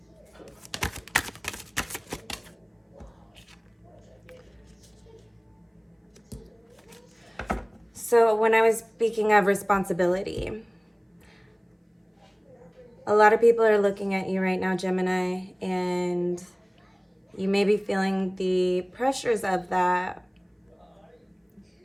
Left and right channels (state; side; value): identical; both; correlation 1.00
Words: So when I was speaking of responsibility, a lot of people are looking at you right now, Gemini, and you may be feeling the pressures of that,